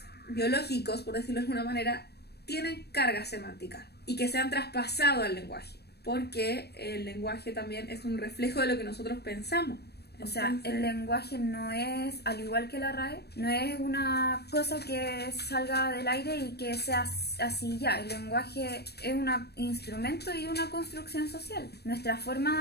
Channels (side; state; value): right; late; 0.47 ms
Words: biológicos, por decirlo de alguna manera, tienen carga semántica y que se han traspasado al lenguaje, porque el lenguaje también es un reflejo de lo que nosotros pensamos. O sea, el lenguaje no es, al igual que la RAE, no es una cosa que salga del aire y que sea así ya. El lenguaje es un instrumento y una construcción social. Nuestra forma